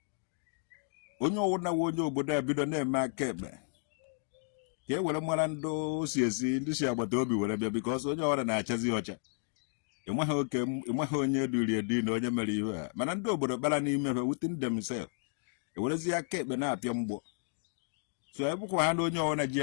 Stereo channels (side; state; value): right; silent; 56 dB below the other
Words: onye ọwụna we onye obodo a bido na-eme aka ekpe ka e were mara ndị osi esi ndị si agbata obi were bịa bikọs onye ọwụna na-achazi ọcha ịnweghị onye duri edi na onye mere ihe a mana ndị obodo kpara n'ime ha within themselves ewerezi aka ekpe na-apịa mgbọ so ebụkwa ha na onye ọwụna ji